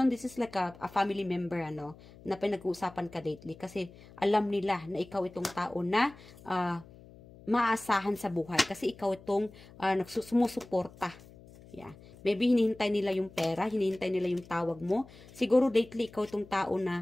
this is like a family member, na pinag-uusapan ka lately. Kasi alam nila na ikaw itong tao na maasahan sa buhay. Kasi ikaw itong sumusuporta. Yeah. Maybe hinihintay nila yung pera, hinihintay nila yung tawag mo. Siguro lately, ikaw itong tao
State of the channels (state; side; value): noise; left; hum, 21 dB below the sound